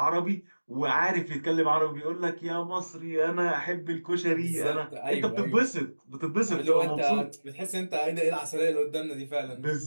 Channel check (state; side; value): inverted; both; correlation -1.00